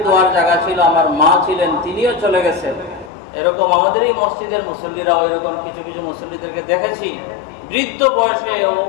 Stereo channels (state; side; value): drops out; right; at 3.1 s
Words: দোয়ার জায়গা ছিল, আমার মা ছিলেন, তিনিও চলে গেছেন। এরকম আমাদের এই মসজিদের মুসল্লিরাও এরকম কিছু কিছু মুসল্লিদেরকে দেখেছি, বৃদ্ধ বয়সে